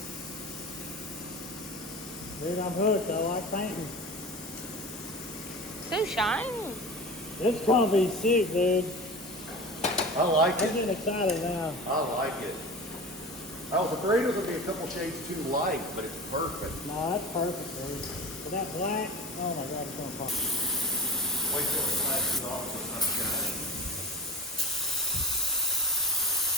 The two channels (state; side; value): normal; both; correlation 0.31